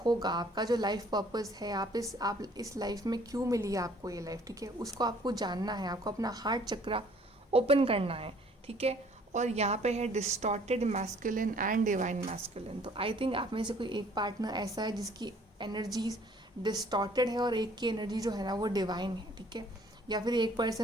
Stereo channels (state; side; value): normal; both; correlation 0.57